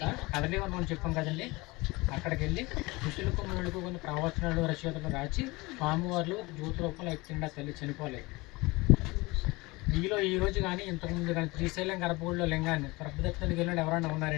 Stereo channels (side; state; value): right; quieter; 23.1 dB